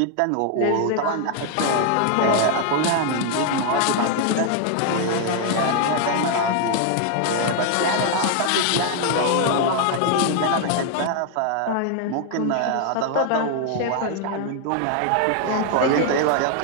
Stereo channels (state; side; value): different; both; correlation 0.00